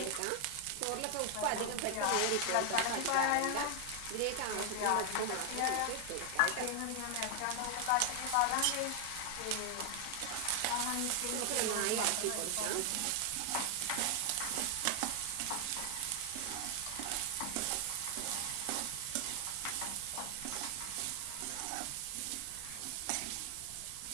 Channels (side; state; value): both; different; correlation 0.00